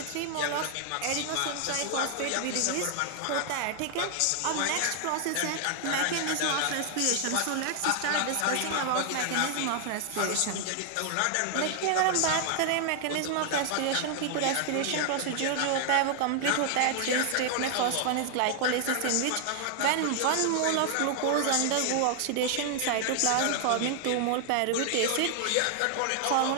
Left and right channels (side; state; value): both; different; correlation 0.00